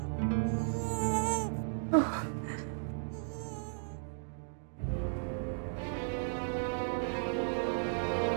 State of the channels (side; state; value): left; silent; digital silence